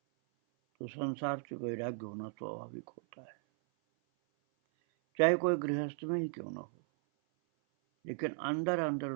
तो संसार से वैराग्य होना स्वाभाविक होता है, चाहे कोई गृहस्थ में ही क्यों न हो, लेकिन अंदर अंदर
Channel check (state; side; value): silent; left; 54 dB below the other